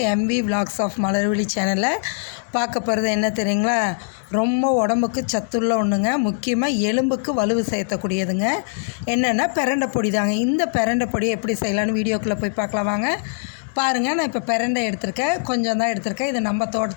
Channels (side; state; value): right; silent; digital silence